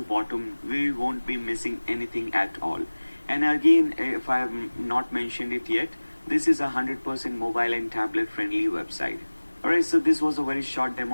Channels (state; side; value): inverted; both; correlation -1.00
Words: bottom. We won't be missing anything at all. And again, if I have not mentioned it yet, this is a 100% mobile and tablet friendly website. Alright, so this was a very short